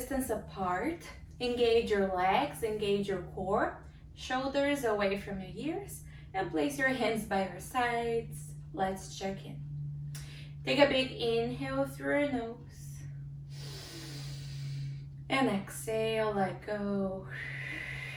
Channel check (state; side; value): identical; both; correlation 1.00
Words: apart, engage your legs, engage your core, shoulders away from your ears, and place your hands by your sides. Let's check in. Take a big inhale through your nose. And exhale, let go.